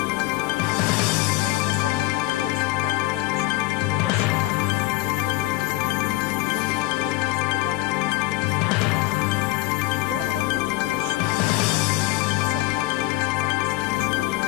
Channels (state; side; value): quieter; right; 18.7 dB